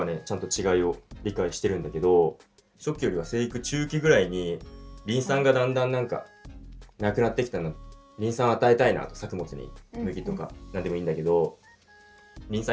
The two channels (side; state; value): both; identical; correlation 1.00